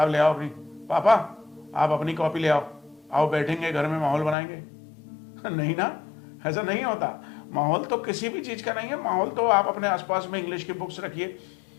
ले आओ अपनी, पापा आप अपनी कॉपी ले आओ, आओ बैठेंगे घर में माहौल बनाएंगे? नहीं ना, ऐसा नहीं होता। माहौल तो किसी भी चीज का नहीं है। माहौल तो आप अपने आसपास में इंग्लिश की बुक्स रखिए,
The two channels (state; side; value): drops out; right; at 4.4 s